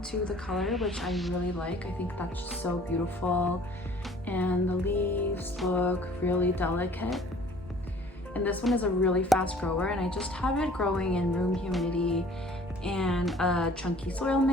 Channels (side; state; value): both; normal; correlation 0.52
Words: to the color, which I really like. I think that's just so beautiful, and the leaves look really delicate. And this one is a really fast grower, and I just have it growing in room humidity and a chunky soil